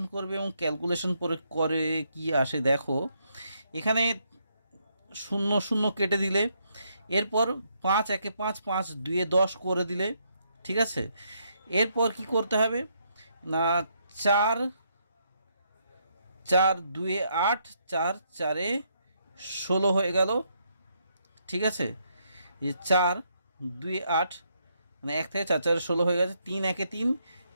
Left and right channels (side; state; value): both; inverted; correlation -0.75